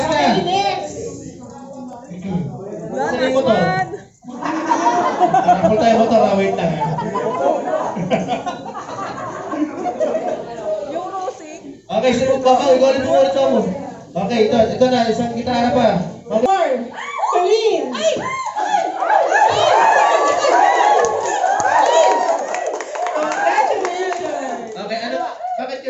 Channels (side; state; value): both; identical; correlation 1.00